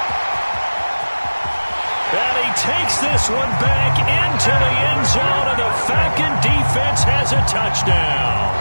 And he takes this one back into the end zone, and the Falcon defense has a touchdown.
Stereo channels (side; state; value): both; inverted; correlation -1.00